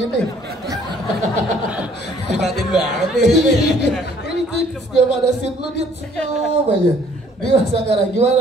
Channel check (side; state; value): both; normal; correlation 0.59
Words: Dibatin banget nih. Ini setiap ada scene lu dia senyum aja. Dimas Anggara,